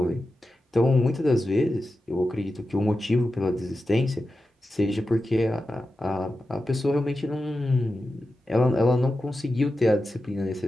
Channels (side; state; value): both; normal; correlation 0.91